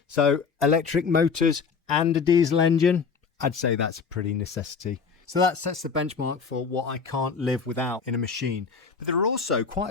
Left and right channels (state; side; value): quieter; right; 5.4 dB